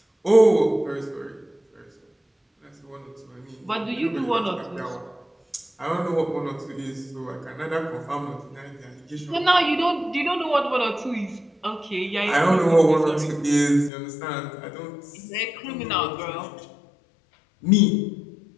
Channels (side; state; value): right; drops out; at 13.9 s